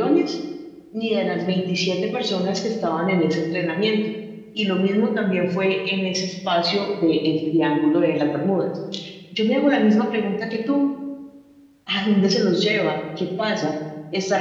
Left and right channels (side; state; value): both; identical; correlation 1.00